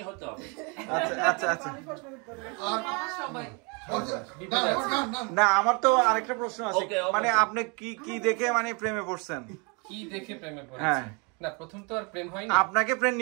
হতে হবে। আচ্ছা না আমার তো আরেকটা প্রশ্ন আছে। মানে আপনি কি দেখে মানে প্রেমে পড়ছেন? কি দেখে প্রেমে পড়েছেন? না প্রথম তো আর প্রেম হয়নি। আপনাকে প্রেম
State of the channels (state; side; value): quieter; left; 32.4 dB